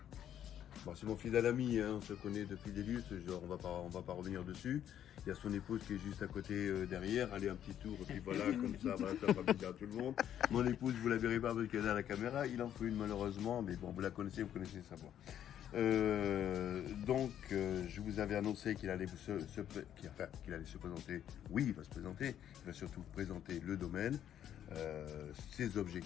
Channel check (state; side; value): quieter; right; 10.3 dB